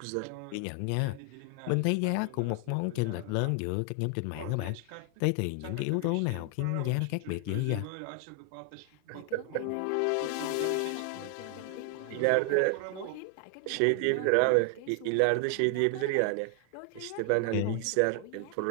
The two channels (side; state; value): both; different; correlation 0.00